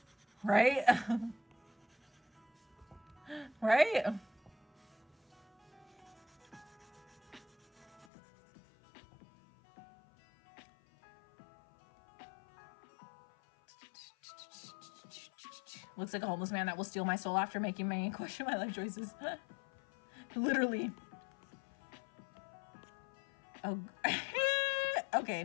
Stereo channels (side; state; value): right; drops out; at 8.1 s